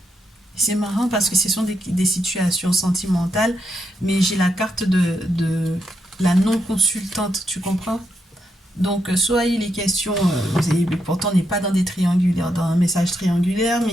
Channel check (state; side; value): normal; both; correlation 0.81